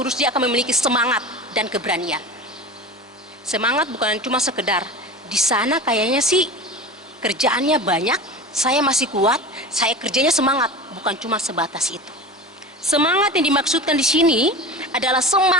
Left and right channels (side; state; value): both; normal; correlation 0.31